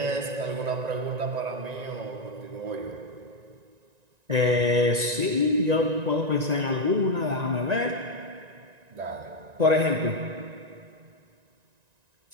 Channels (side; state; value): left; late; 1.9 ms